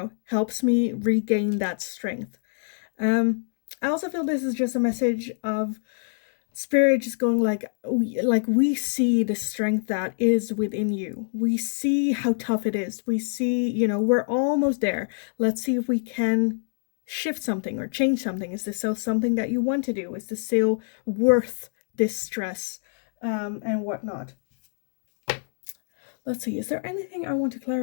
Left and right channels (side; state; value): right; silent; digital silence